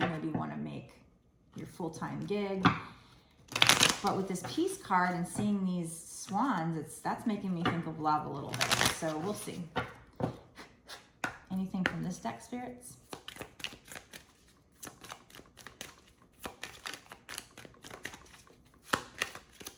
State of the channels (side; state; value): both; identical; correlation 1.00